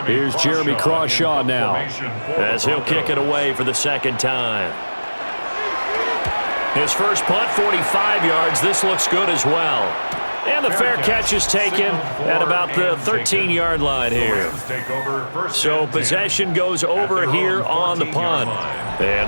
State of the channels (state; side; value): inverted; both; correlation -1.00